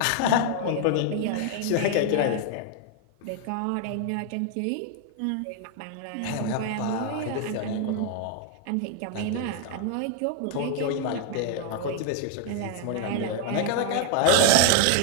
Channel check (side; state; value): both; different; correlation 0.00